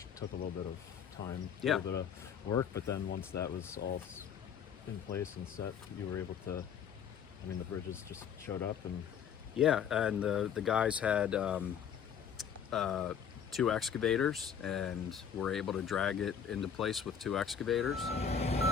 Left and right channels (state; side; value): quieter; right; 7.7 dB